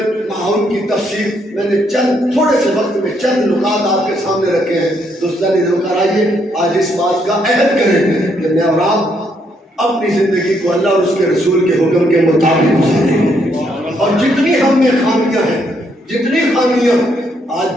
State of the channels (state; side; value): normal; both; correlation 0.73